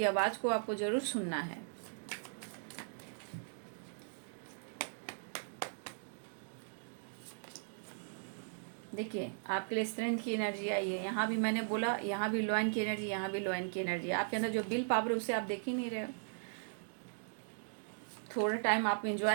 आवाज़ को आपको ज़रूर सुनना है। देखिए, आपके लिए स्ट्रेंथ की एनर्जी आई है। यहाँ भी मैंने बोला, यहाँ भी लॉयन की एनर्जी, यहाँ भी लॉयन की एनर्जी। आपके अंदर जो विल पावर है उसे आप देख ही नहीं रहे हो। थोड़ा टाइम आप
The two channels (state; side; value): silent; left; digital silence